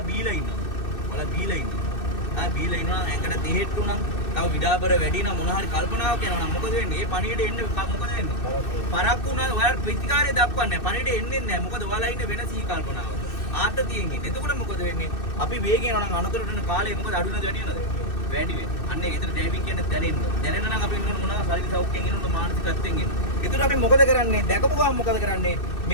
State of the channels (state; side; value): late; right; 2.6 ms